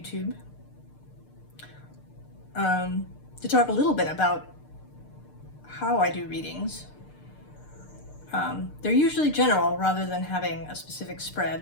To talk a little bit about how I do readings. They're usually general rather than having a specific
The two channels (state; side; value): late; right; 6.7 ms